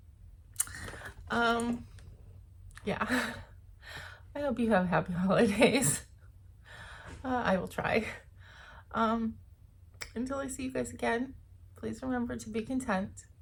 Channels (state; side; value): identical; both; correlation 1.00